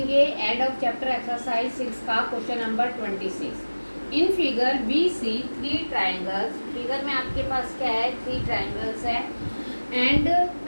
एंड ऑफ चैप्टर एक्सरसाइज 6 का question number 26। In figure we see 3 triangles. Figure में आपके पास क्या है, 3 ट्राइंगल्स है एंड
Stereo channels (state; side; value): inverted; both; correlation -1.00